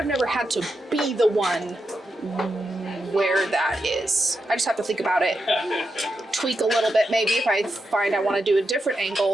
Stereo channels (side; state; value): both; normal; correlation 0.86